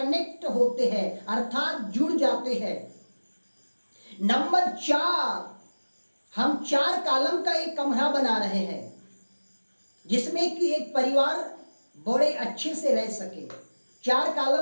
होते हैं, अर्थात जुड़ जाते हैं। नंबर 4, हम 4 कॉलम का एक कमरा बना रहे हैं जिसमें कि एक परिवार बड़े अच्छे से रह सके। 4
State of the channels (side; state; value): both; inverted; correlation -1.00